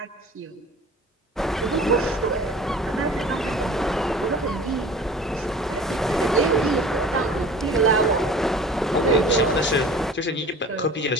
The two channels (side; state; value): both; normal; correlation 0.44